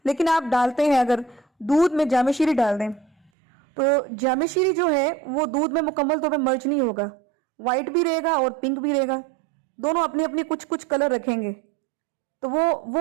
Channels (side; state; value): left; drops out; at 3.3 s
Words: لیکن آپ ڈالتے ہیں اگر دودھ میں جامع شیری ڈال دیں تو جامع شیری جو ہے وہ دودھ میں مکمل طور پہ مرج نہیں ہوگا، وائٹ بھی رہے گا اور پنک بھی رہے گا، دونوں اپنے اپنے کچھ کلر رکھیں گے، تو